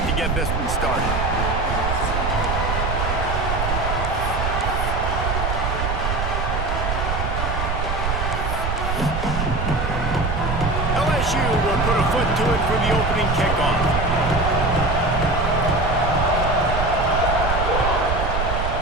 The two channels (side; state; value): right; noise; rumble, 1 dB below the sound